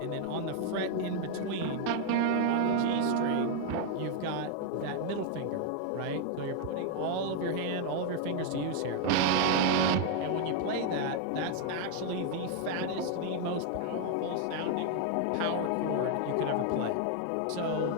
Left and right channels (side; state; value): both; different; correlation 0.00